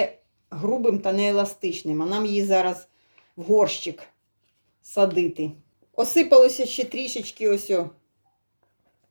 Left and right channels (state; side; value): inverted; both; correlation -1.00